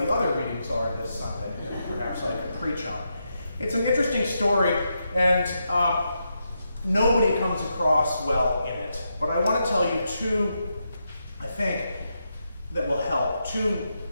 the other readings are this Sunday that perhaps I could preach on. It's an interesting story, and nobody comes across well in it. But I want to tell you two, I think, that will help. Two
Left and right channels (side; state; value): both; inverted; correlation -0.84